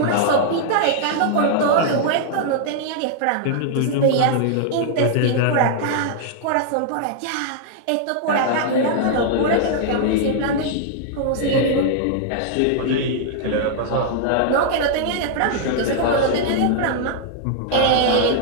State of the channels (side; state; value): both; different; correlation -0.01